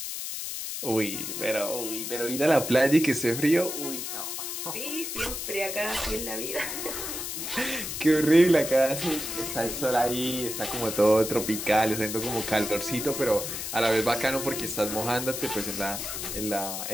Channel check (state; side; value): noise; left; hiss, 5 dB below the sound